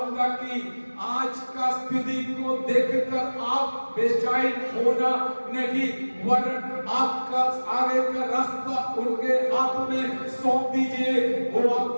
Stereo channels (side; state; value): both; inverted; correlation -1.00